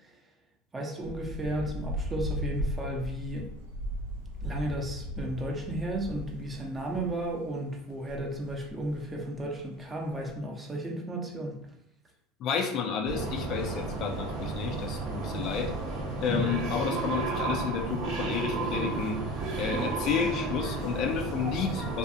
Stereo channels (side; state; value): both; normal; correlation 0.38